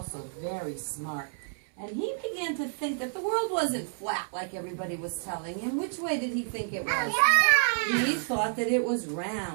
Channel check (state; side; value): silent; left; 58 dB below the other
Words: very smart. And he began to think that the world wasn't flat like everybody was telling him. Which way did he think it was? He thought that it was